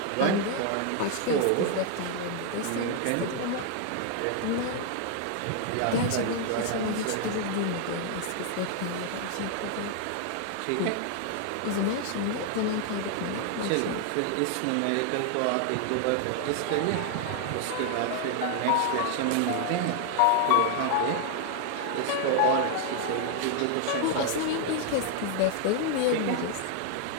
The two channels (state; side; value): different; both; correlation 0.00